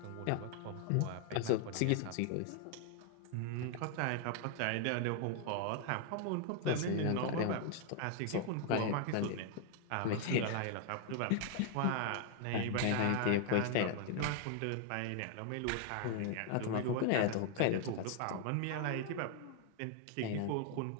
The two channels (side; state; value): both; different; correlation 0.00